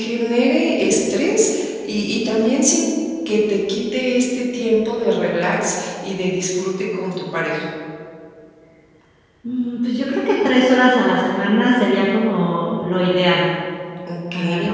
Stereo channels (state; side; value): identical; both; correlation 1.00